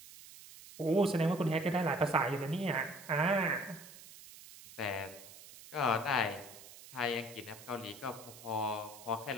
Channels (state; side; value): noise; right; hiss, 17 dB below the sound